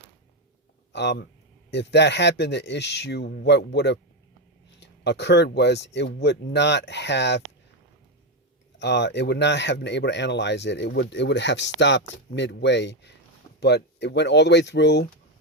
if that happened, the issue, what would have occurred was it would not have been able to analyze it. It would have stopped midway, but it went all the way through.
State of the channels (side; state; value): both; normal; correlation 0.08